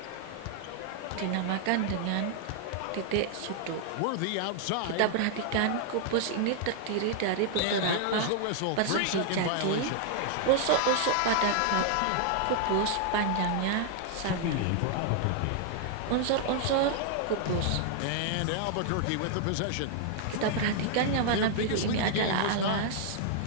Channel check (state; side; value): different; both; correlation 0.00